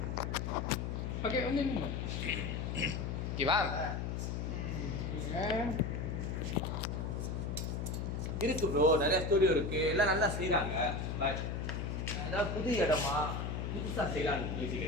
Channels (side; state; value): left; noise; hum, 2 dB below the sound